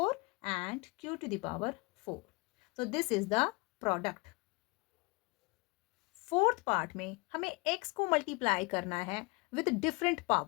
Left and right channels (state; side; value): quieter; right; 26.5 dB